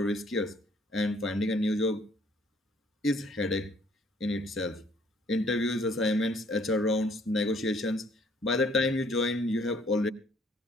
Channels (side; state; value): both; normal; correlation 0.62